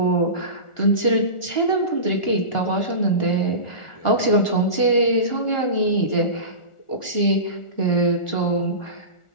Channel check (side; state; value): right; late; 1.4 ms